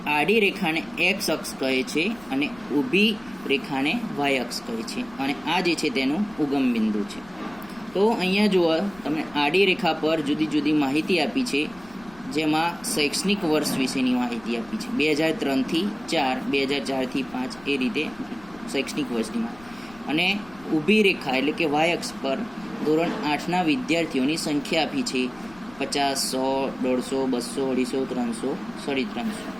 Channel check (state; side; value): noise; left; rumble, 23 dB below the sound